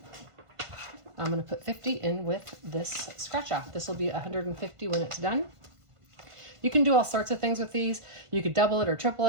I'm going to put 50 in with this scratch off. This will be 150 when it's done. You can do all sorts of things with these. You could double it or triple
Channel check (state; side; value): late; left; 1.5 ms